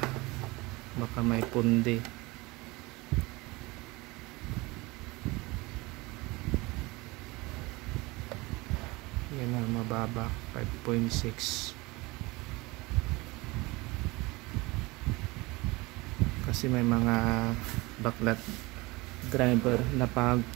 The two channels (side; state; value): left; quieter; 23.1 dB